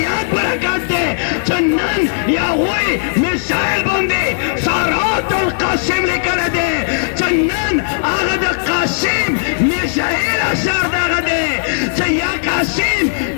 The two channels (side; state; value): right; silent; digital silence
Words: برکت دے چنن یا ہوئی میزائل بندے سارات القاسم لکر دے چنن آغا دا قاسم میزائل اثر داغ دے یا قاسم